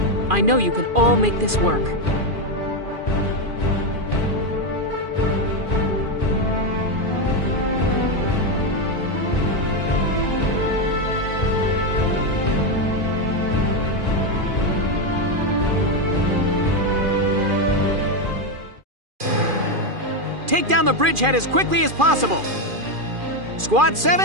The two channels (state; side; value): late; left; 2.4 ms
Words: I know you can all make this work. take down the bridgehead as quickly as possible. Squad